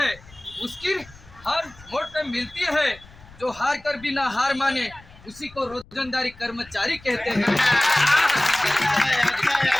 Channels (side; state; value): left; noise; rumble, 23 dB below the sound